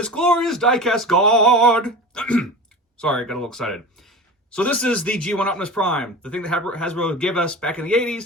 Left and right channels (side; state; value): both; normal; correlation 0.32